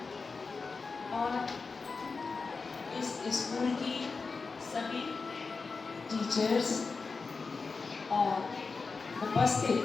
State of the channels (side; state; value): right; quieter; 4.5 dB